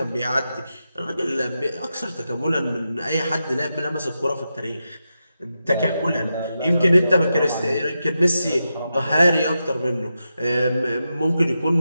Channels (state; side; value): inverted; both; correlation -0.88